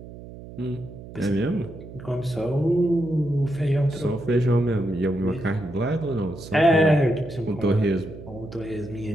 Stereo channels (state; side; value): noise; right; hum, 15 dB below the sound